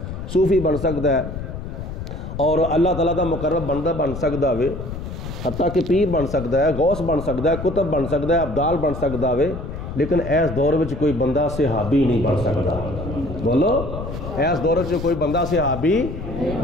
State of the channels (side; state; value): left; noise; rumble, 8 dB below the sound